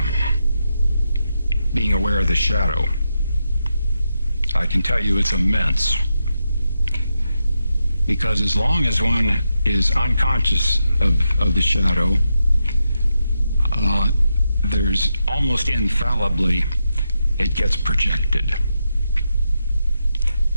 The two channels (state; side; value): inverted; both; correlation -0.86